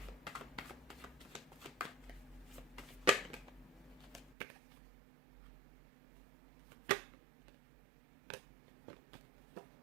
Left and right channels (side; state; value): left; drops out; at 4.4 s